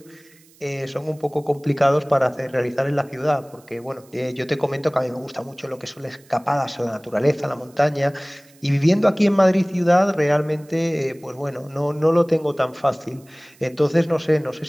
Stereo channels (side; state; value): right; noise; hiss, 28 dB below the sound